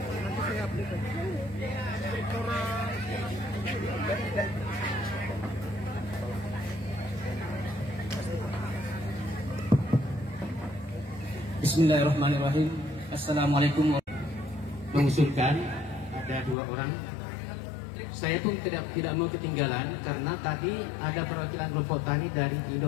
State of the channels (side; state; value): right; drops out; at 16.6 s